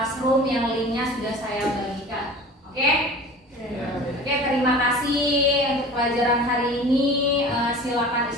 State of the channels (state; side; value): normal; both; correlation 0.40